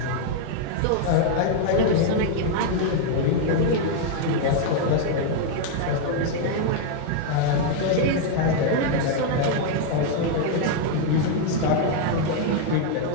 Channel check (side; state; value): both; different; correlation 0.00